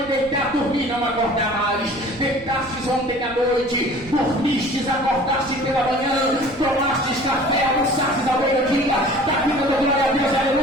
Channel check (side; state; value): left; noise; rumble, 21 dB below the sound